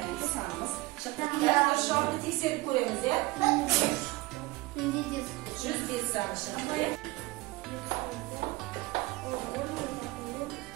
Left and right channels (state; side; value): quieter; left; 20.9 dB